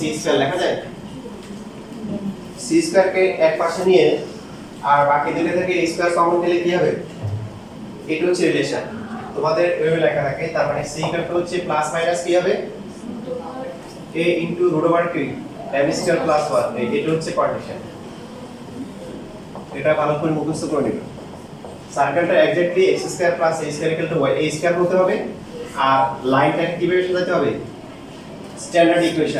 লেখা যায়। c² কে এক পাশে নিয়ে আর বাকি দুটো থেকে a² কমন নিলে কি হবে? এটা হচ্ছে রিলেশন তোমাদের এভাবে লেখা থাকে। তার মানে c হচ্ছে প্লাস মাইনাস কি হবে? a ইনটু √কি m² প্লাস 1, এটা হচ্ছে কন্ডিশন। এটা ভালো করে মুখস্থ করে নিবে। সার্কেলটা exactly x² + a² = y, a² হতে হবে আর লাইনটাকে কিভাবে সাজাতে হবে? Standard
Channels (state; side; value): identical; both; correlation 1.00